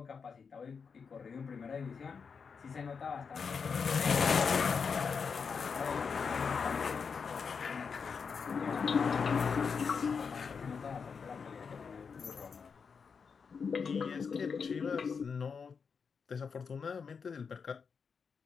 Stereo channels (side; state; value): right; quieter; 5.8 dB